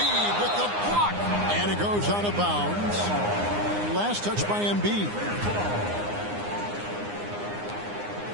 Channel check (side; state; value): left; late; 9.7 ms